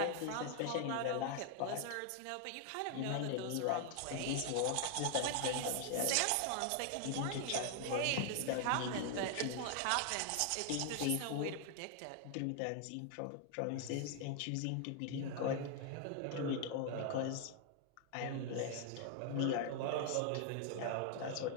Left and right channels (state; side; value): different; both; correlation 0.00